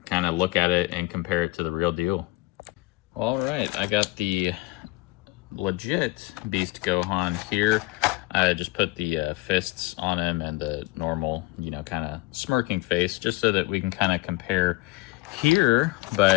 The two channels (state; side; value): quieter; right; 21.5 dB